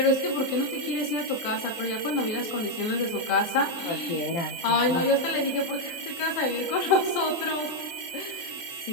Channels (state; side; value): late; right; 24 ms